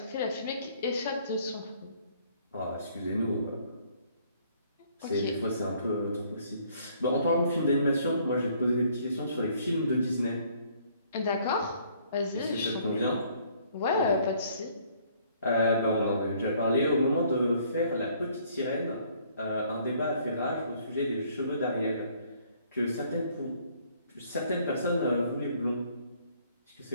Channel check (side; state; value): both; inverted; correlation -0.62